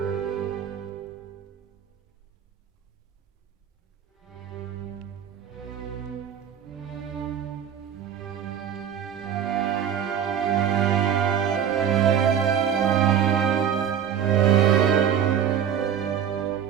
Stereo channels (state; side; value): quieter; left; 8.8 dB